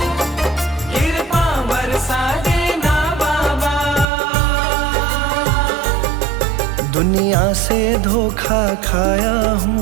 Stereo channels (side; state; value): left; drops out; at 4.0 s